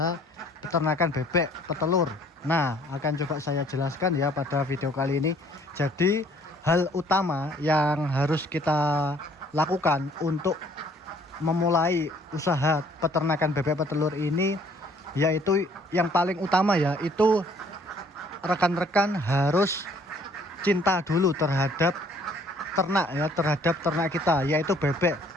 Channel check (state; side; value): normal; both; correlation 0.59